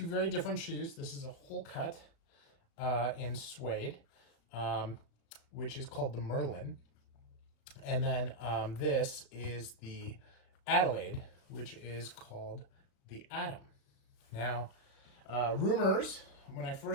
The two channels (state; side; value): late; right; 36 ms